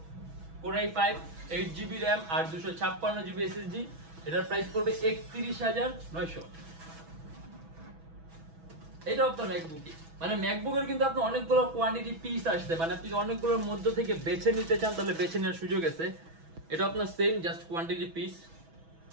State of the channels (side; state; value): left; late; 6.1 ms